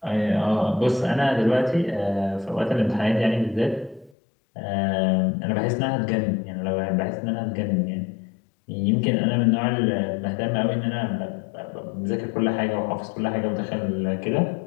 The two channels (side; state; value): right; drops out; at 4.1 s